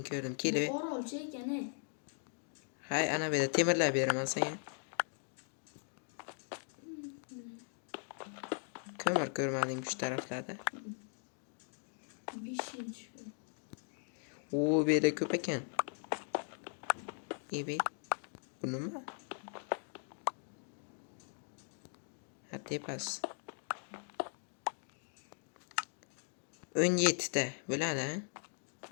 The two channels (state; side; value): silent; right; 52 dB below the other